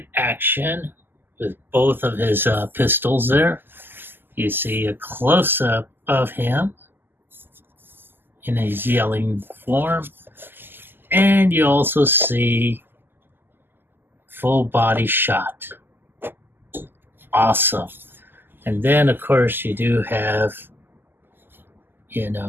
action with both of his pistols there. You see a close-up of him in his yelling form. And you also see full body shot. Awesome. And then, of course, you do have,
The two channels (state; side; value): late; left; 0.096 ms